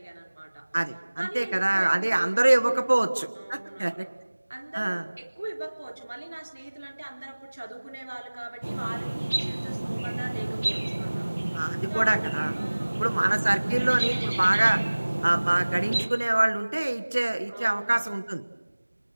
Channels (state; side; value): inverted; both; correlation -1.00